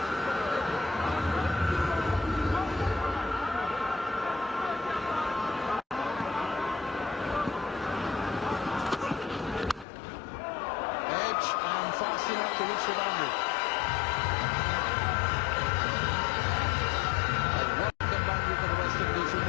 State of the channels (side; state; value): right; drops out; at 9.9 s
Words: pitch and fast enough to reach the boundary. A welcome boundary for the West Indies, who